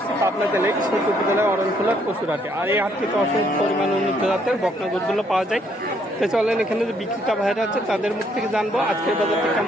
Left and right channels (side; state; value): both; normal; correlation 0.69